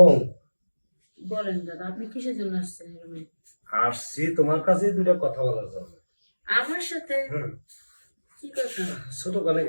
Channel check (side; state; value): both; inverted; correlation -1.00